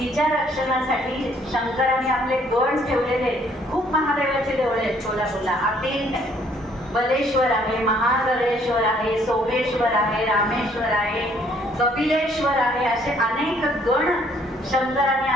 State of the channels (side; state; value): both; normal; correlation 0.63